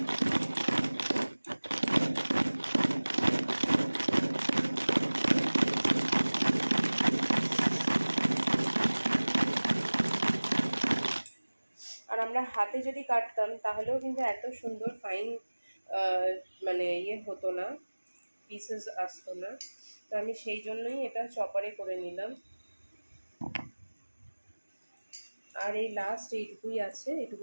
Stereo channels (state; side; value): inverted; both; correlation -1.00